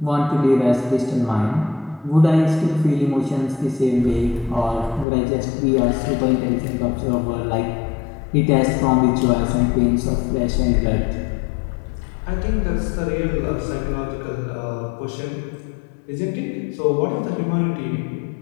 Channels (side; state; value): right; drops out; at 5.1 s